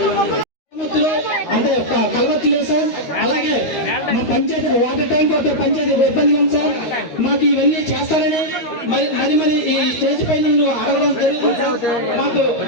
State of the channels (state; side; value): late; right; 13 ms